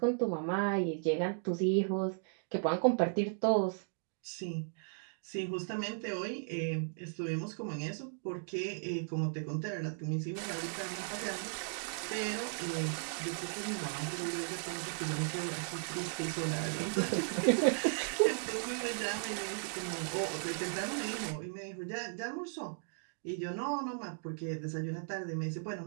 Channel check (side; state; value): left; silent; digital silence